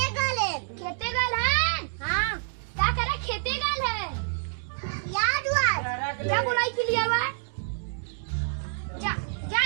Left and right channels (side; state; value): left; silent; digital silence